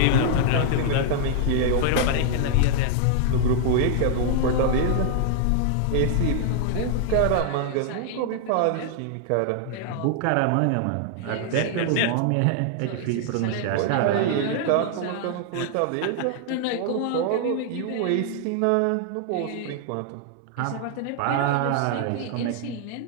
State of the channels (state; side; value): different; both; correlation -0.01